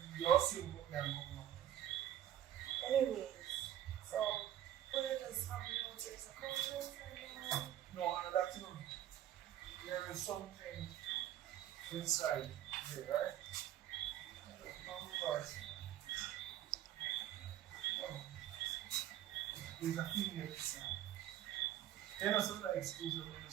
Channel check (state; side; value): quieter; left; 11.7 dB